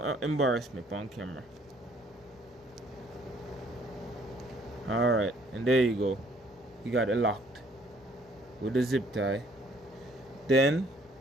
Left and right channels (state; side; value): normal; both; correlation 0.62